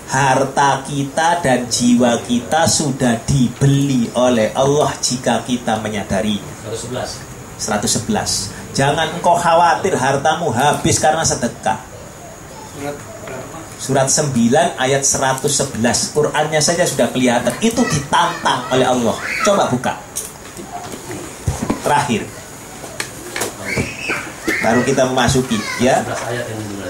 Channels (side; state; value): both; identical; correlation 1.00